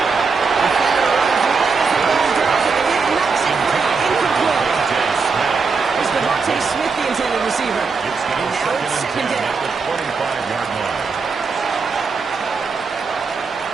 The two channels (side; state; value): left; quieter; 4.9 dB